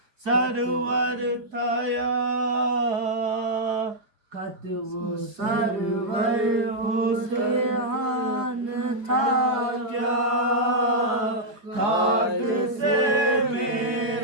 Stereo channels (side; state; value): left; late; 4.8 ms